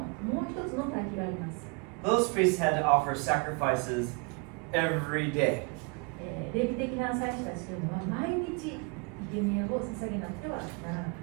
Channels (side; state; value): left; quieter; 31.5 dB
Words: もう一つの対比があります。 Those priests had to offer sacrifices every day. レビ的な祭司たちというのは毎日生贄を捧げなくてはならなかっ